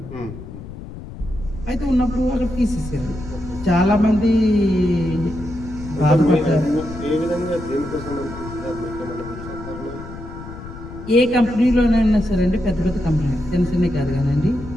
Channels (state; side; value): noise; left; rumble, 12 dB below the sound